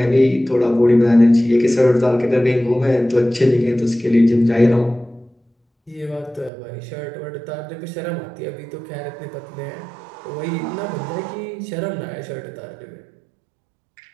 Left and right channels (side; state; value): left; drops out; at 6.5 s